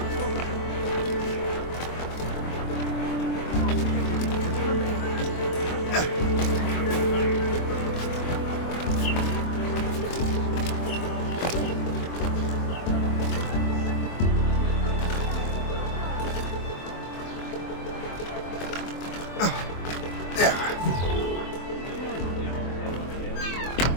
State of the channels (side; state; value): right; late; 24 ms